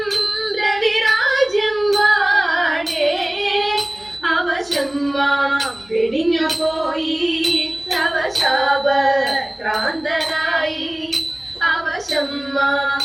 രവിരാജ്യം വാടേ അവശം വെടിഞ്ഞു പോയി അവശാപ ക്രാന്തനായി അവശം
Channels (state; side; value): noise; left; hum, 29 dB below the sound